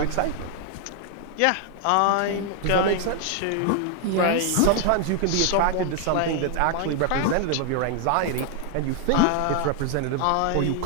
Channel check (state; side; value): different; both; correlation 0.00